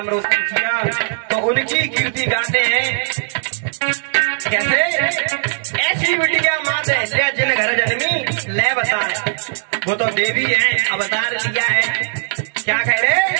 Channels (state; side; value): silent; left; digital silence